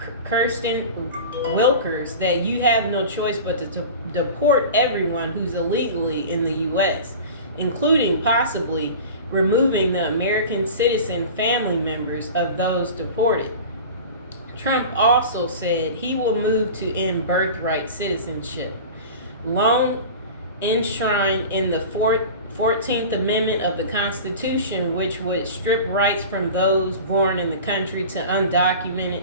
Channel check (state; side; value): inverted; both; correlation -0.35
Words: Kirsten Wilkers that you have no choice but to deport everyone who's illegally in the U.S., including possibly removing the American citizen family members of those deported. Trump also said he will move to end birthright citizenship, long enshrined in the 14th Amendment of the Constitution, which would strip rights from those born in the country to undocumented